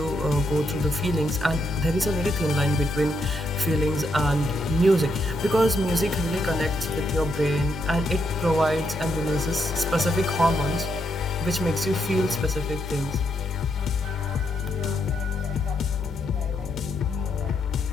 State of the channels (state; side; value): normal; both; correlation 0.78